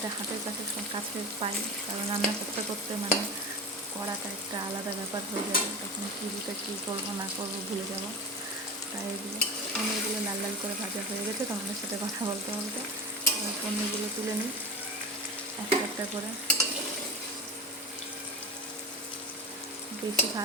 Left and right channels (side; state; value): both; normal; correlation 0.28